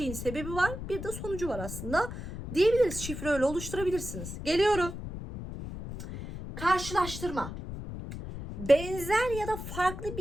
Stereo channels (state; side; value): noise; left; rumble, 8 dB below the sound